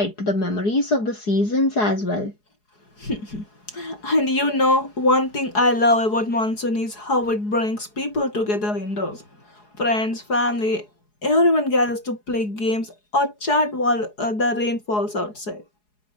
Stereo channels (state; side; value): late; right; 4.8 ms